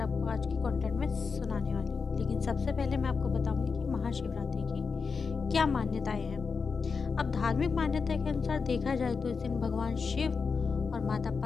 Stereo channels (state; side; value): quieter; right; 5.1 dB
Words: आज की कंटेंट में सुनाने वाली हूँ, लेकिन सबसे पहले मैं आपको बताऊँगी कि महाशिवरात्रि की क्या मान्यताएँ हैं। अब धार्मिक मान्यता के अनुसार देखा जाए तो इस दिन भगवान शिव और माता